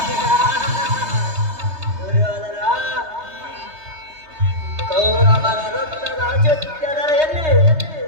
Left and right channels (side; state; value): left; late; 3.2 ms